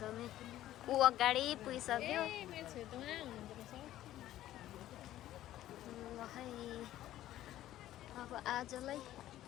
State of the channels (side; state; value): right; quieter; 13.6 dB